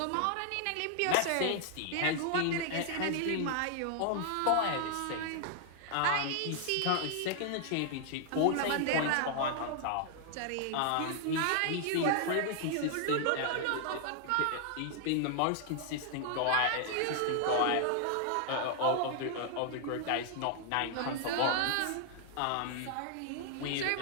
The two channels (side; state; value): both; different; correlation 0.00